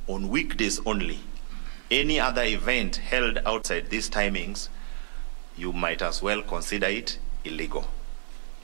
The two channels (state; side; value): silent; left; digital silence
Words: on weekdays only. Any other event held outside these timings, you might as well consider it illegal.